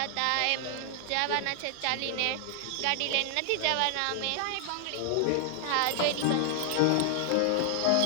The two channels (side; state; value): both; different; correlation 0.00